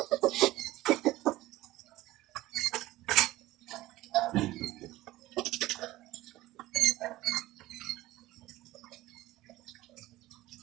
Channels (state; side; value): quieter; left; 17.0 dB